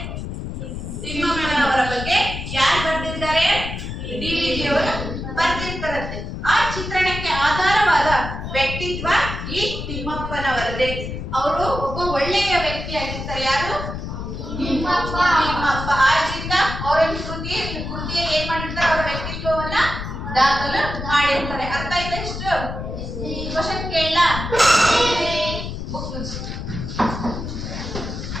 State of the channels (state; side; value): noise; left; rumble, 6 dB below the sound